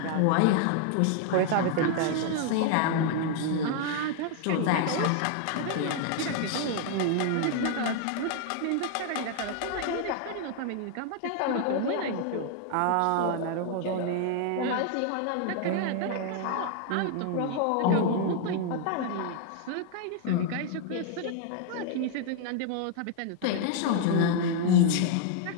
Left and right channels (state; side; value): different; both; correlation 0.00